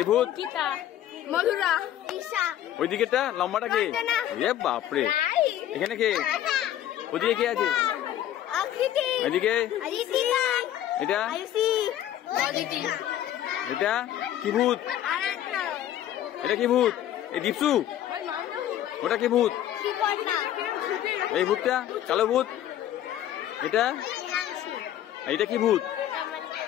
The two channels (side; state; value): right; quieter; 11.8 dB